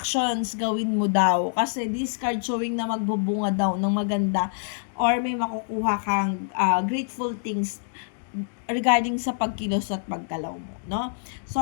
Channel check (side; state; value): right; silent; digital silence